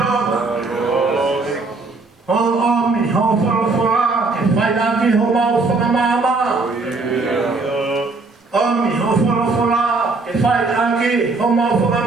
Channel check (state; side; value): quieter; left; 3.6 dB